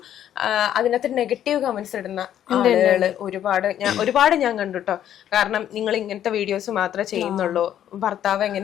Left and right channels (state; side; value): quieter; right; 10.7 dB